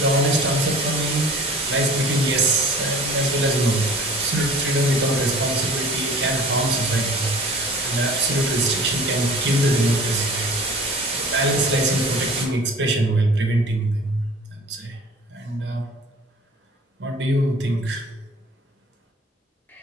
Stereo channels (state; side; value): normal; both; correlation 0.45